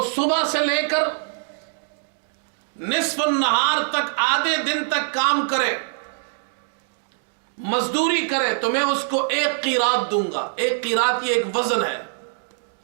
صبح سے لے کر نصف النہار تک, آدھے دن تک کام کرے, مزدوری کرے, تو میں اس کو 1 قیراط دوں گا. 1 قیراط یہ ایک وزن ہے.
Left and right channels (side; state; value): left; silent; digital silence